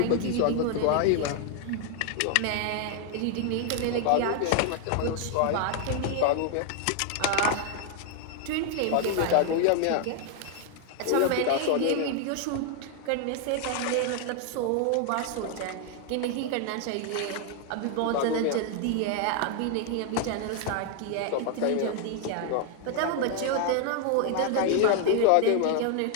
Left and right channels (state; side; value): different; both; correlation 0.00